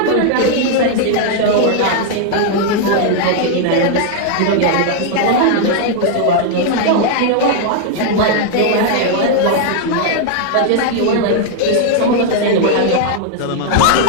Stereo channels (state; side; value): different; both; correlation 0.00